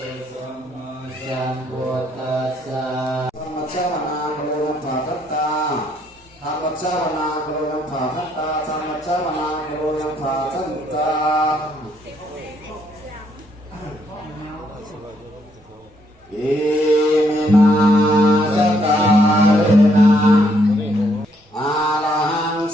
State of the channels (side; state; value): both; normal; correlation 0.71